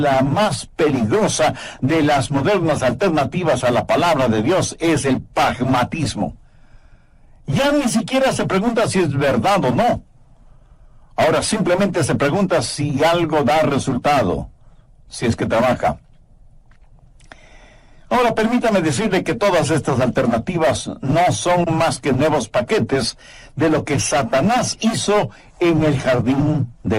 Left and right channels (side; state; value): both; identical; correlation 1.00